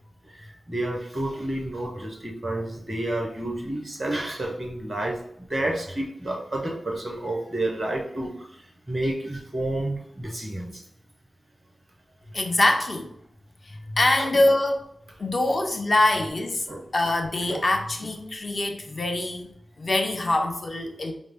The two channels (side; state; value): both; normal; correlation 0.94